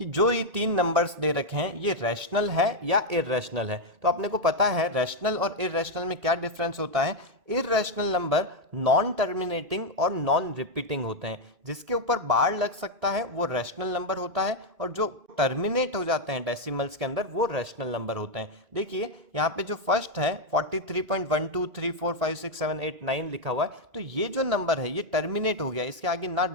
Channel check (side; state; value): left; late; 2.2 ms